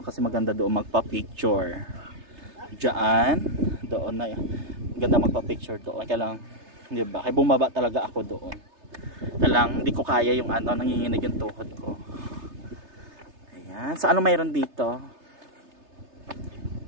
Kasi maganda doon magpa-picture diyan, doon na yan. Ganda magpa-picture doon. Kaya lang, di ba? Kaya bumaba talaga ako doon. Kaya lang, hindi ko kaya yung ano, nanginginig yung tuhod ko. Ayan. So, ano mayroon dito?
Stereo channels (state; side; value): late; left; 3.3 ms